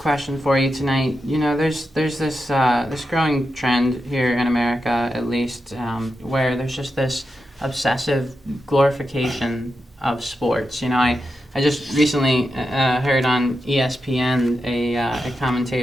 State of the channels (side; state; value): both; normal; correlation 0.88